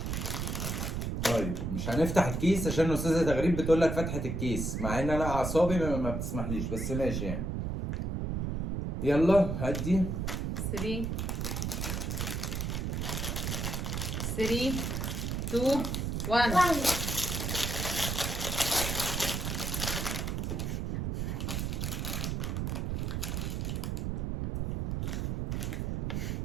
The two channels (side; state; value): right; noise; rumble, 1 dB below the sound